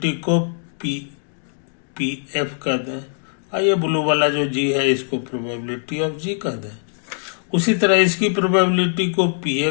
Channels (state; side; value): silent; right; digital silence